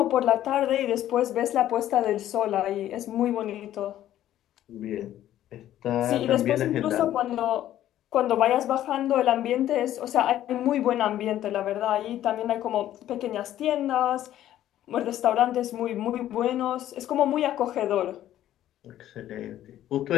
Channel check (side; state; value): right; quieter; 12.5 dB